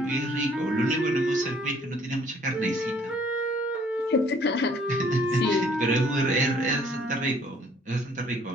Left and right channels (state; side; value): normal; both; correlation 0.60